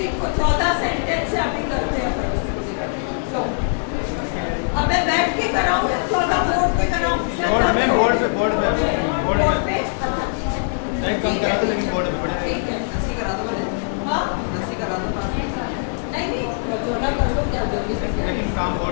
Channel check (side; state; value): right; silent; 63 dB below the other